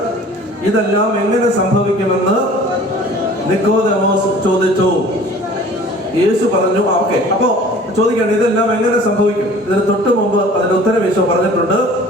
ഇതെല്ലാം എങ്ങനെ സംഭവിക്കുമെന്ന് നിക്കോദെമോസ് ചോദിച്ചു. യേശു പറഞ്ഞു, ഓക്കെ. അപ്പോ ചോദിക്കുകയാണ്, ഇതെല്ലാം എങ്ങനെ സംഭവിക്കും? ഇതിന് തൊട്ട് മുമ്പ് അതിന്റെ ഉത്തരം യേശു പറഞ്ഞിട്ടുണ്ട്.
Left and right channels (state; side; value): normal; both; correlation 0.47